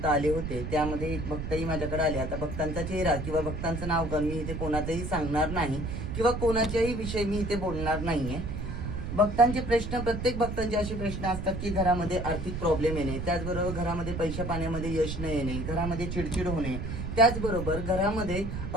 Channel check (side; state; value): right; noise; rumble, 5 dB below the sound